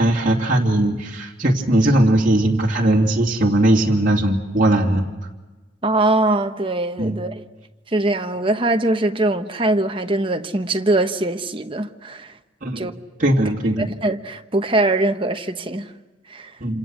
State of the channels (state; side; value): normal; both; correlation 0.64